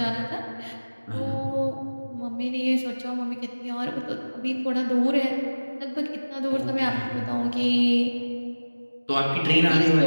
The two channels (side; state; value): both; inverted; correlation -1.00